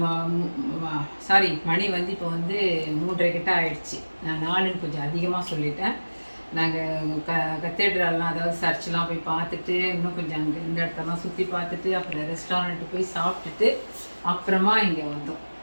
சாரி, மணி வந்து இப்போ வந்து 3:30 கிட்ட ஆயிடுச்சு. நான் 4ன்னு கொஞ்சம் அதிகமாக சொல்லிட்டேன். நாங்கள் கத்தீட்ரல்லாம், அதாவது சர்ச்செலாம் போய் பார்த்துட்டு, இன்னும் கொஞ்சம் அங்கே இந்த இடத்தெல்லாம் சுற்றி பார்த்துட்டு, அப்புறம் ரெஸ்டாரண்ட்டு போய் சாப்பிட்டுட்டு அப்புறமா இங்கே வந்தோம்.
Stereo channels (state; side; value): inverted; both; correlation -1.00